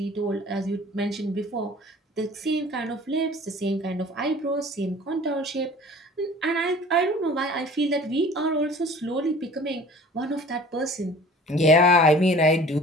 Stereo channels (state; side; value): normal; both; correlation 0.46